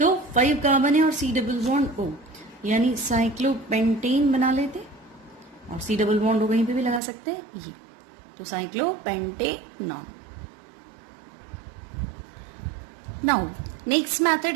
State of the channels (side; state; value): left; drops out; at 7.0 s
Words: 5 कार्बन है और C डबल बॉन्ड O, यानी साइक्लोपेंटेन बना लेते और C डबल बॉन्ड O कहीं पे भी लगा सकते हैं ये, तो साइक्लोपेंटेनॉन। नाउ नेक्स्ट